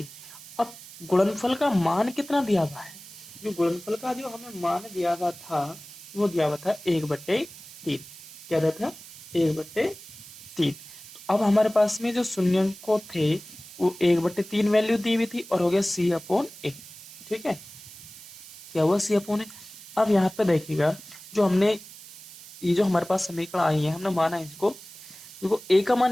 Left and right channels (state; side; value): noise; right; hiss, 16 dB below the sound